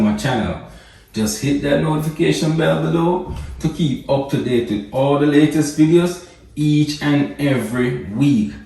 channel. Just hit that notification bell below to keep up to date with all the latest videos each and every week.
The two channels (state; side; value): identical; both; correlation 1.00